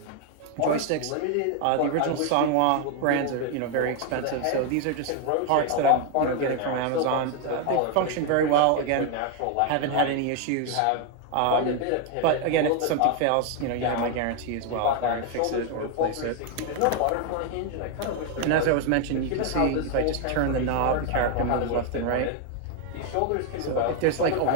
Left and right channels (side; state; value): both; different; correlation 0.01